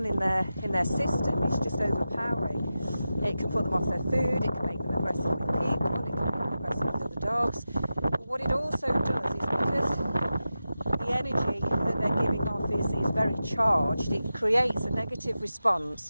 in their system is just overpowering. It can put them off their food, it can make them aggressive with people, it can make them aggressive with other dogs. But what it also does is, because the energy that they're giving off is very charged, it creates a negative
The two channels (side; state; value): both; inverted; correlation -0.92